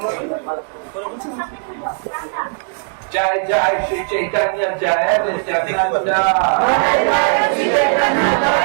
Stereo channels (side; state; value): left; silent; 67 dB below the other